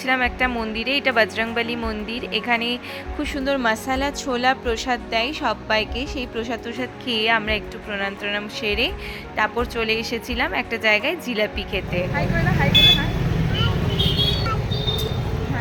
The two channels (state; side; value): identical; both; correlation 1.00